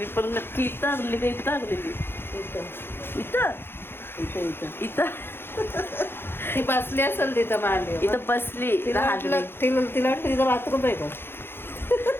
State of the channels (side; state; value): right; late; 0.11 ms